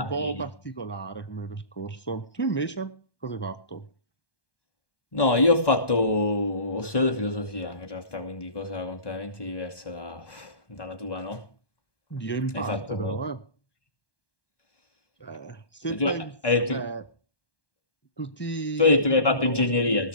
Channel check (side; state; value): right; late; 1.2 ms